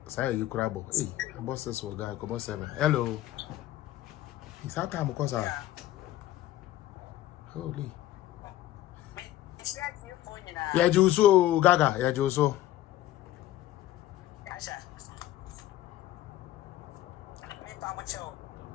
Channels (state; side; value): quieter; right; 14.0 dB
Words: you crabo. Hey, boss says so guy come 7. Hello. It's how time because holy. Yeah, Juso Gaga. Yeah, Juso.